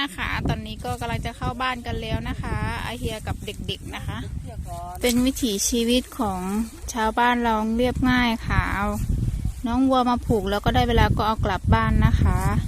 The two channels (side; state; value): both; identical; correlation 1.00